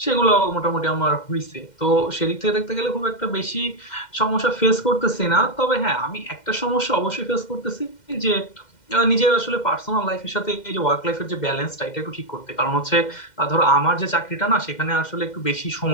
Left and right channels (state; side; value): late; right; 2.1 ms